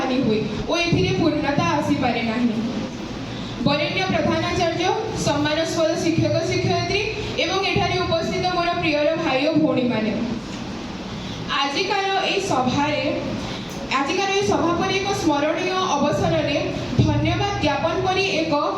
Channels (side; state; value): both; identical; correlation 1.00